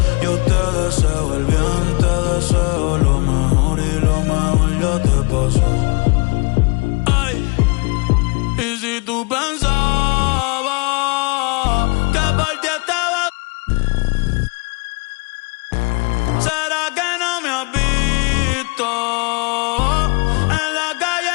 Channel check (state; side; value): quieter; right; 31.0 dB